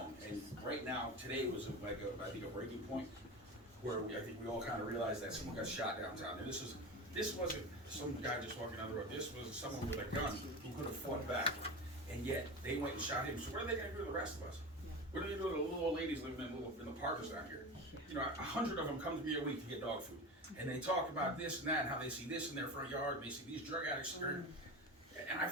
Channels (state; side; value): normal; both; correlation 0.27